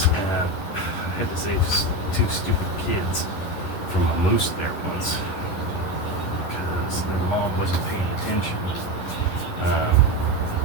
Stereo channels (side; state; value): right; late; 11 ms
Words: I had to save two stupid kids from a moose there once because their mom wasn't paying attention.